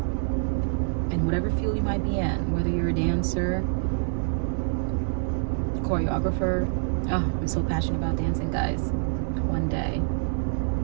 in whatever field you might be in, whether you're a dancer, choreographer. Oh, I'm so passionate about dancing, guys. One day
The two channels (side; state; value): left; silent; digital silence